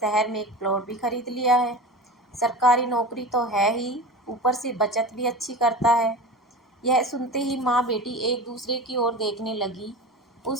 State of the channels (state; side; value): normal; both; correlation 0.30